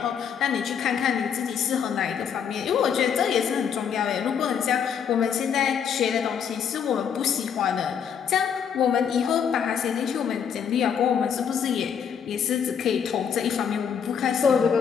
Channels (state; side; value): quieter; right; 7.6 dB